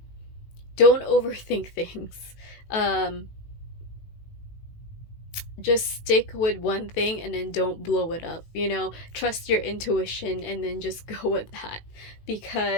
don't overthink things. Um, just stick with one thing and then don't blow it up. Trust your intuition and then just go with that.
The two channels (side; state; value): right; late; 18 ms